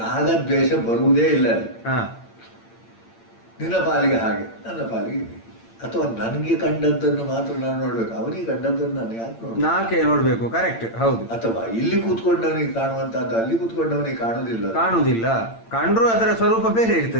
ರಾಗದ್ವೇಷ ಬರುವುದೇ ಇಲ್ಲ. ನಿನ್ನ ಪಾಲಿಗೆ ಹಾಗೆ, ನನ್ನ ಪಾಲಿಗೆ ಹೀಗೆ. ಅಥವಾ ನನಗೆ ಕಂಡದ್ದನ್ನು ಮಾತ್ರ ನಾನು ನೋಡ್ಬೇಕು, ಅವನಿಗೆ ಕಂಡದ್ದನ್ನು ನಾನು ಯಾಕೆ ನಾಕೆ ನೋಡ್ಬೇಕು? ಕರೆಕ್ಟ್, ಹೌದು. ಅಥವಾ ಇಲ್ಲಿ ಕೂತ್ಕೊಂಡವನಿಗೆ ಕಾಣುವಂತಹದ್ದು ಅಲ್ಲಿ ಕೂತ್ಕೊಂಡವನಿಗೆ ಕಾಣುವುದಿಲ್ಲ. ಕಂಡ್ರು ಅದರ ಸ್ವರೂಪ ಬೇರೆ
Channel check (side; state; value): right; late; 8.8 ms